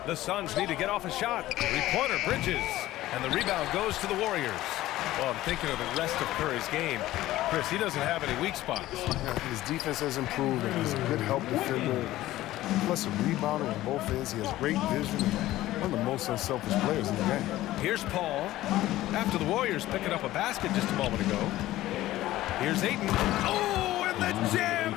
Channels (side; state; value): right; quieter; 15.6 dB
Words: The Suns need to get off a shot. 3-pointer, Bridges. And the rebound goes to the Warriors. Well, I'm thinking of the rest of Curry's game. Chris, he doesn't have any weak spots. Yeah, his defense has improved, and he's a good help defender. Plus a rebounder on both ends. He has great vision. One of the most unselfish players in the game. Here's Paul. After the Warriors picking up a basket just a moment ago. Here's Ayton. Oh, and the jam